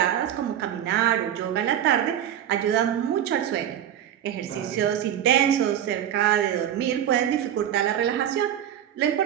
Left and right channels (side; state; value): left; quieter; 10.4 dB